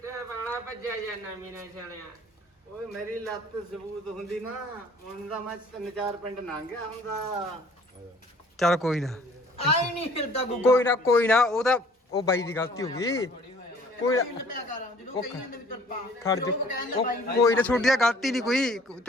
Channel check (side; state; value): both; normal; correlation 0.54